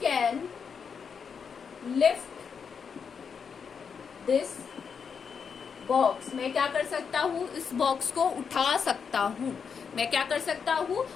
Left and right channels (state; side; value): quieter; right; 6.3 dB